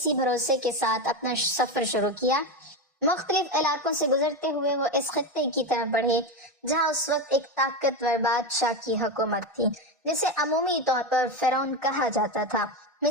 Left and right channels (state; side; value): normal; both; correlation 0.15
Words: بھروسے کے ساتھ اپنا سفر شروع کیا۔ مختلف علاقوں سے گزرتے ہوئے وہ اس خطے کی طرف بڑھے جہاں اس وقت ایک طاقتور بادشاہ کی حکومت تھی جسے عمومی طور پر فرعون کہا جاتا تھا۔